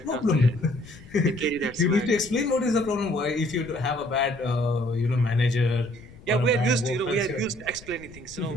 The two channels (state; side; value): noise; left; rumble, 20 dB below the sound